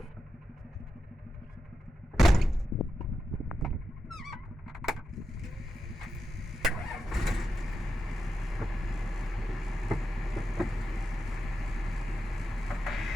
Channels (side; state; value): both; normal; correlation 0.89